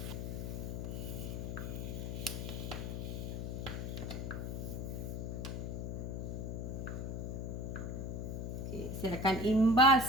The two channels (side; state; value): left; noise; hum, 3 dB below the sound